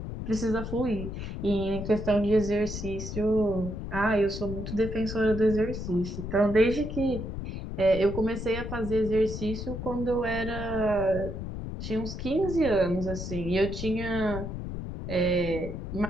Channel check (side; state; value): left; noise; rumble, 6 dB below the sound